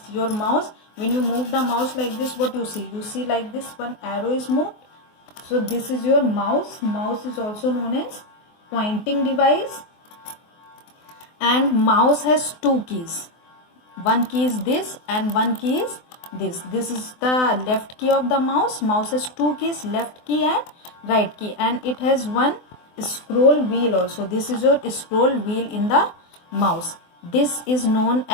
your mouse. When you move the mouse like this, what you see? You see like this, one arrow is moved. So this is your mouse. Mouse is also known as pointing device. And mouse has 2 keys. One key is this and one key is this. This is the left key of the mouse. Mouse has 2 keys, left key and right key, and it has one scroll wheel also. This is your scroll wheel in the mouse. This is known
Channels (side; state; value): right; late; 24 ms